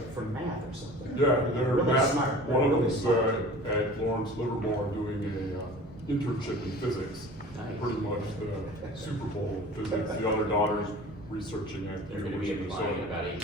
for math or something. Yeah, they're really math. smart. One of Really them's smart. at Lawrence Livermore doing a internship in physics. Nice. Pretty much the Super Bowl physics. The other daughter's researching at the They're gonna be University of applying in Minnesota. about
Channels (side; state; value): both; normal; correlation 0.42